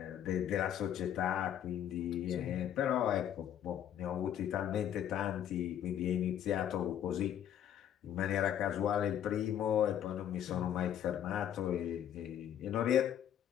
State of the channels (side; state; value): right; quieter; 10.2 dB